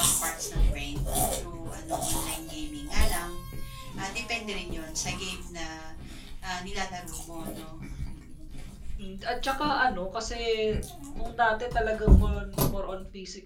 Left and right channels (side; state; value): both; identical; correlation 1.00